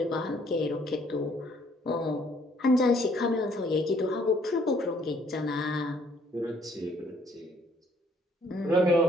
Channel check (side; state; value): both; normal; correlation 0.63